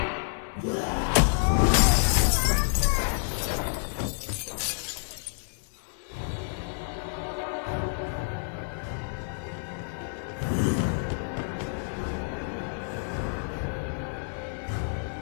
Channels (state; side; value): silent; right; 59 dB below the other